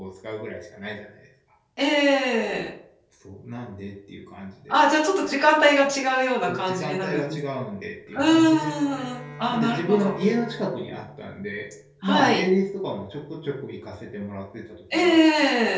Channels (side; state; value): both; identical; correlation 1.00